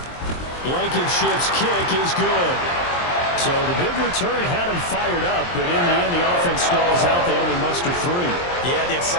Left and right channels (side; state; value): right; late; 23 ms